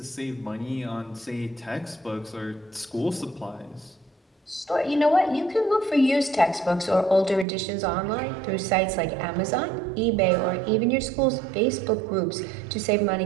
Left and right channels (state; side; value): drops out; left; at 7.5 s